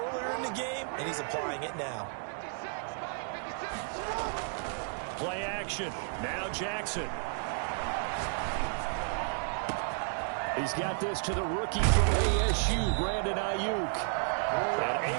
in the game, and he's applying it now. Play action. Now Jackson. He's got this to the rookie from ASU, Brandon Ayuk. And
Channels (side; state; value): left; silent; 56 dB below the other